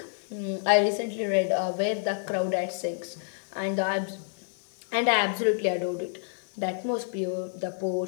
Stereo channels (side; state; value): right; silent; digital silence